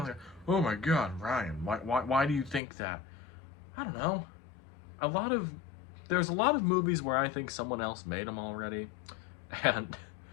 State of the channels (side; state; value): right; drops out; at 2.6 s